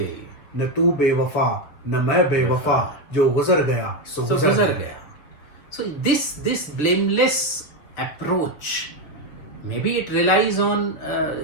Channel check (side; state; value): right; late; 6.7 ms